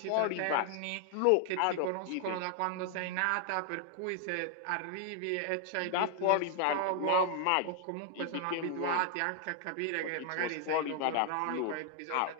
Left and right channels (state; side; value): different; both; correlation 0.00